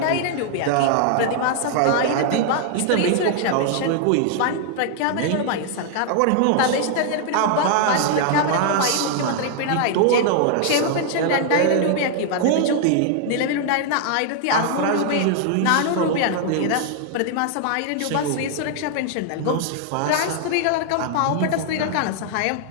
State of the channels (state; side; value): different; both; correlation 0.00